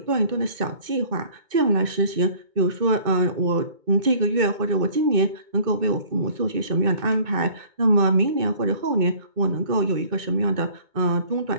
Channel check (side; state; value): left; late; 2.2 ms